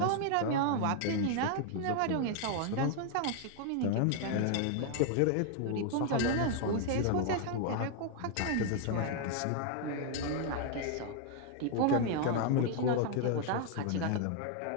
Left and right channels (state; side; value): different; both; correlation 0.00